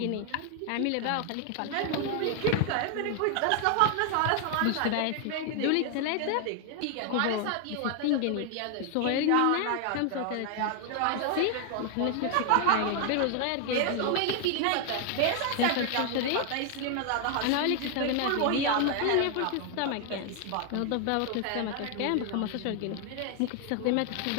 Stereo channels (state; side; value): different; both; correlation 0.00